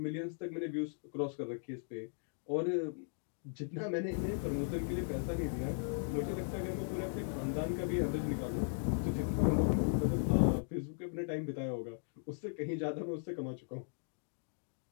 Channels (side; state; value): right; silent; digital silence